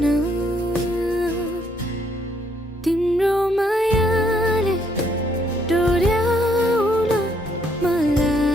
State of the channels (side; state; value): both; normal; correlation 0.70